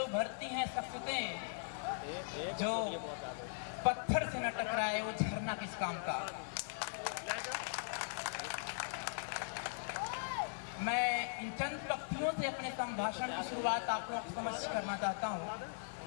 उभरती हैं शख्सियतें, जो पत्थर से न टकराए वो झरना किस काम का। मैं इन चंद पंक्तियों से अपने संभाषण की शुरुआत आप लोगों को समझ करना चाहता हूँ।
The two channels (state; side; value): silent; right; digital silence